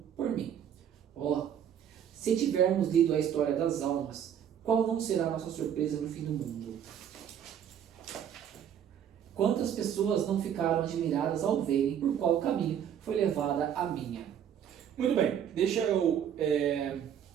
por mim. Se tivermos lido a história das almas, qual não será a nossa surpresa no fim do mundo? Quantas pessoas não ficaram admiradas ao verem por qual caminho foi levada a minha? Muito bem, deixa eu...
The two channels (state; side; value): quieter; left; 9.2 dB